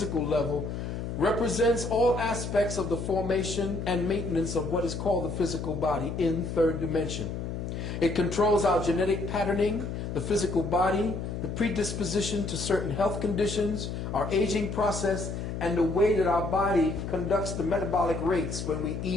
level, represents all aspects of the formation and maintenance of what is called the physical body in 3rd dimension. It controls our genetic patterning, the physical body, the predisposition to certain health conditions, our aging process, and the way that our body conducts the metabolic rates when we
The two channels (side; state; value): left; noise; hum, 5 dB below the sound